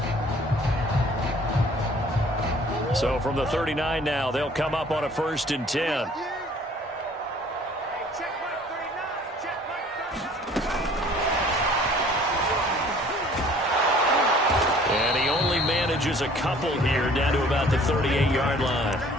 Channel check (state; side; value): normal; both; correlation 0.53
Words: So from the 39 now, they'll come up on a 1st and 10. Manages a couple here down to about the 38-yard line.